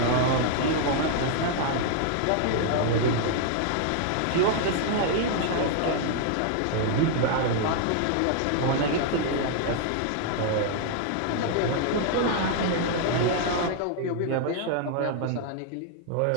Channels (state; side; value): different; both; correlation 0.00